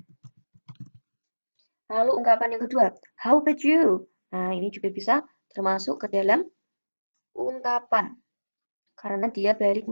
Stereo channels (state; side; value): inverted; both; correlation -1.00